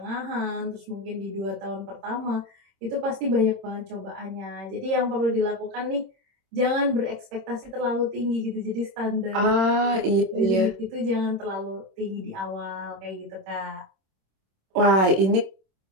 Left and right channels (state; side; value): late; left; 26 ms